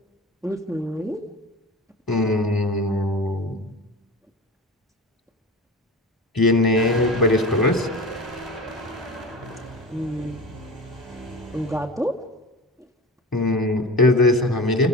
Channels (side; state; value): both; normal; correlation 0.32